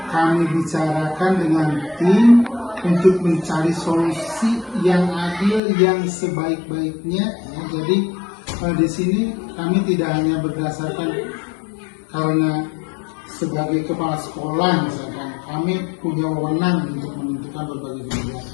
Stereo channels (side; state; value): right; drops out; at 5.6 s